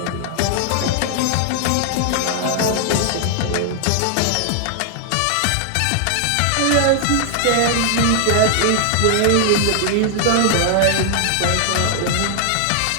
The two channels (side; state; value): both; different; correlation 0.00